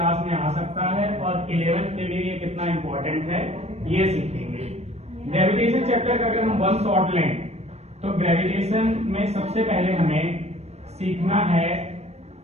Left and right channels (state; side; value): late; left; 0.31 ms